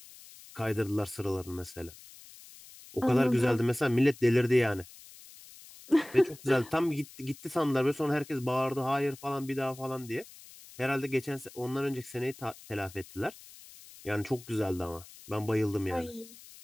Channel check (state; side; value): noise; left; hiss, 19 dB below the sound